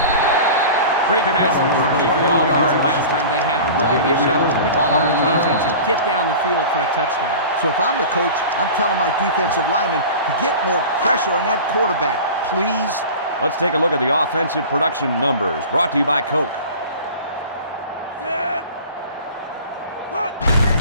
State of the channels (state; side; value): inverted; both; correlation -0.37